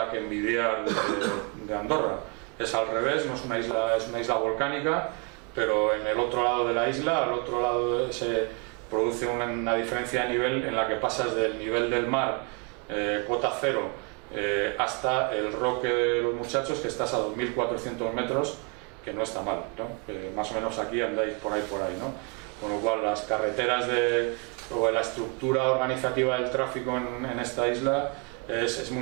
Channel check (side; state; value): left; quieter; 32.9 dB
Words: que envidiar de Andorra. Es al revés, no es una isla volcánica, pero en el otro lado de la isla, al otro lado se produce una diferencia de nivel en la que pasas del nivel del mar, cota cero, hasta el Roque de los Muchachos, que estás a 2.400 metros, que no está mal, ¿no? Más o menos aquí andáis por ahí, ¿no? Con lo cual las carreteras o la estructura organizativa del tráfico en esta isla es